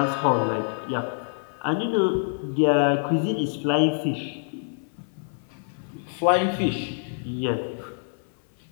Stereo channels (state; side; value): silent; right; 61 dB below the other